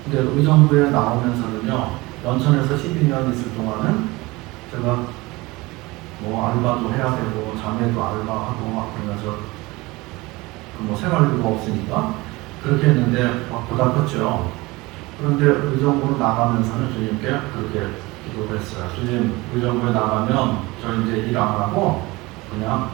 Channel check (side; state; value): left; quieter; 22.1 dB